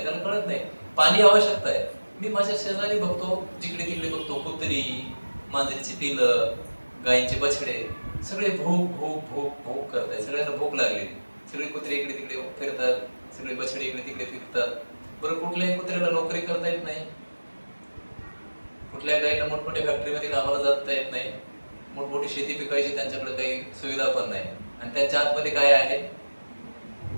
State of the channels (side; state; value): both; inverted; correlation -1.00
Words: त्याला कळत नाही. पाणी आवश्यकता आहे. मी माझ्या शेजारी बघतो, जिकडे तिकडे बघतो, कुत्री, मांजरीची पिलं, गायींचे बछडे, सगळे भूक करतायत. सगळ्यांना भूक लागली. सगळे कुत्रे इकडे तिकडे फिरतात, सगळे बछडे इकडे तिकडे फिरतात. बरं, कुठल्याही कुत्र्याला नोकरी करता येत नाही, कुठल्या गायीला मोठमोठ्या फॅक्टरीमध्ये कामाला जाता येत नाही, मोठमोठी शेती पिकायची त्यांच्याकडे काही सुविधा पण नाही. आणि त्यांच्या आतमध्ये काय आहे,